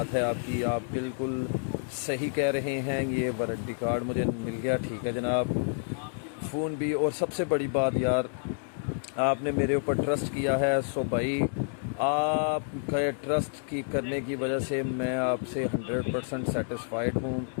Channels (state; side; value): silent; right; digital silence